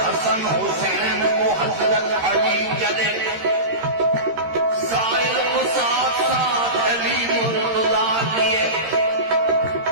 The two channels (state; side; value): late; left; 13 ms